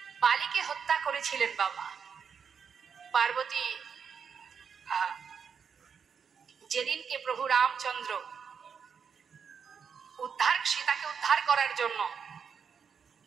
বালিকে হত্যা করেছিলেন বাবা পার্বতী, যেদিনকে প্রভু রামচন্দ্র সীতাকে উদ্ধার করার জন্য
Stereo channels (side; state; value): left; quieter; 6.7 dB